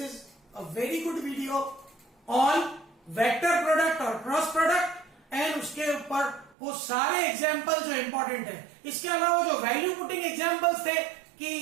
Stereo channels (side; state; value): left; drops out; at 6.6 s